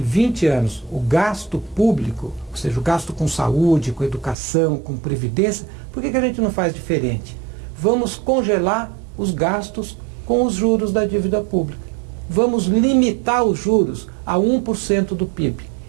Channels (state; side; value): drops out; left; at 4.4 s